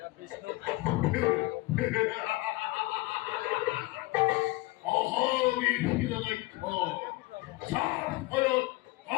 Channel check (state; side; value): quieter; right; 21.0 dB